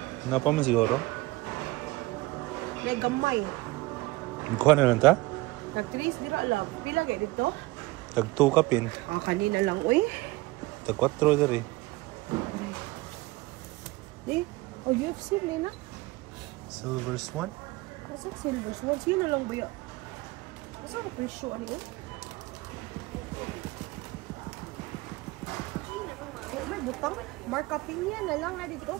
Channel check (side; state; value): left; quieter; 20.9 dB